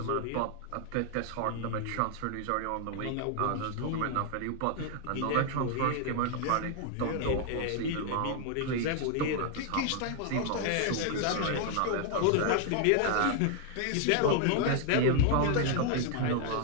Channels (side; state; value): both; different; correlation 0.00